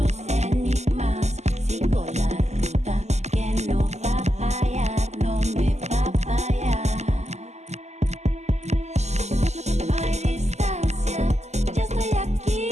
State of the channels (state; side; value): late; left; 0.33 ms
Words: enigmas. Sigo la ruta que no va a fallar, no me va a fallar. No hay distancia, ya estoy aquí,